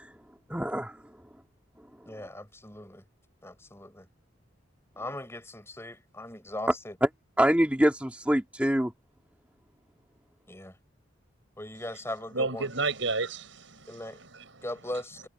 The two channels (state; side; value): normal; both; correlation 0.74